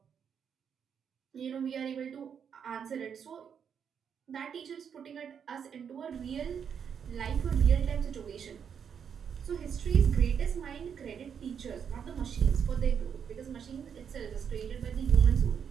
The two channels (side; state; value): left; quieter; 7.5 dB